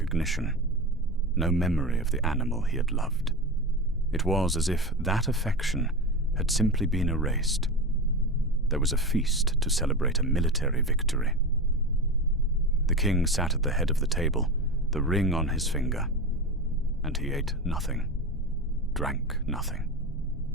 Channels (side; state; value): both; normal; correlation 0.23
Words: no memory of the animal he had loved. It was as if that affection had simply been erased. There was a feast to celebrate a military victory. The king sat at the head of the table, the ring on his finger, and he ate nothing, drank nothing,